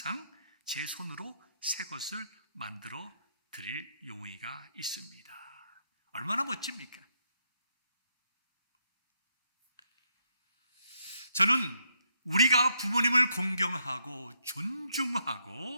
제 손으로 새 것을 만들어 드릴 용의가 있습니다. 얼마나 멋집니까? 저는 우리가 부모님을 공경하고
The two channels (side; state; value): both; inverted; correlation -0.76